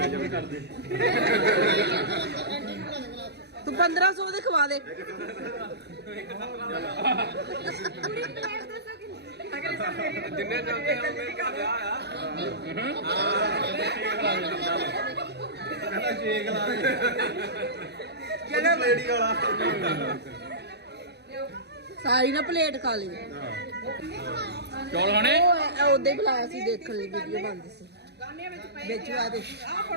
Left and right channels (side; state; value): left; late; 0.49 ms